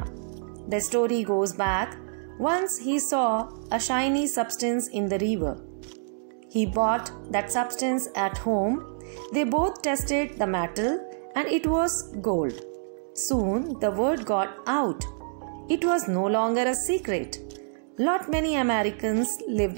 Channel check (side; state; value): left; silent; digital silence